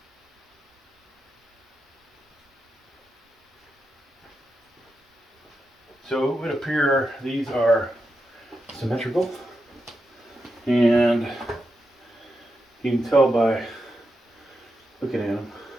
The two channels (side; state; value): both; normal; correlation 0.87